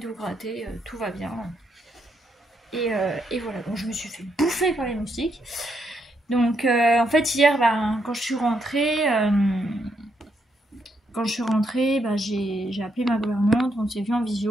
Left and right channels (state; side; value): normal; both; correlation 0.77